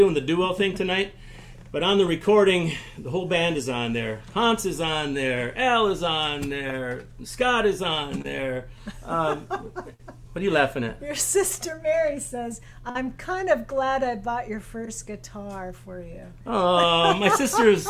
the duo thing tonight, but on the recording, the whole band is on there. Hans is on there, Al is on there, Scott is on there. What are you laughing at? Your sister Mary says, I'm kind of glad I bought your first guitar for you. Oh, my sister's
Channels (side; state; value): both; identical; correlation 1.00